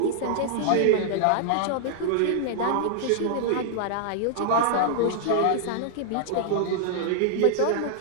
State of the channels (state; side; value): different; both; correlation -0.01